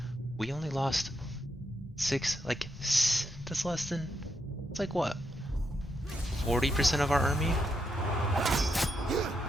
we only lost 6, like, that's less than, it's like what, 40% of our army?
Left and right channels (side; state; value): both; normal; correlation 0.81